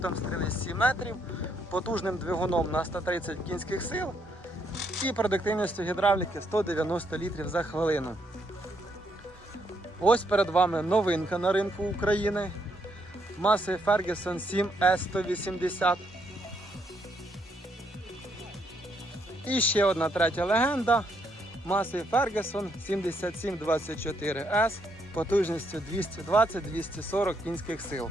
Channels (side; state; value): both; normal; correlation 0.74